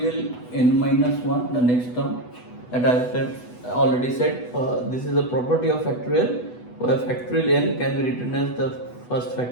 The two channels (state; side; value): late; right; 8.1 ms